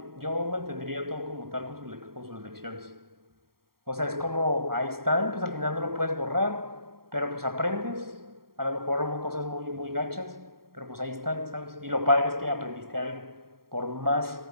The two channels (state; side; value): late; left; 0.93 ms